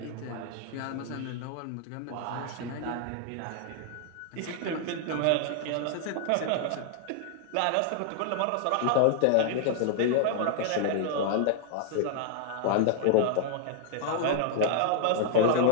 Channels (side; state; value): both; different; correlation 0.00